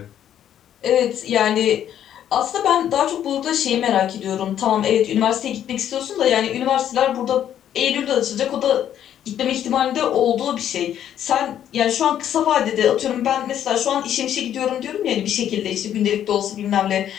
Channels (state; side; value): quieter; right; 10.4 dB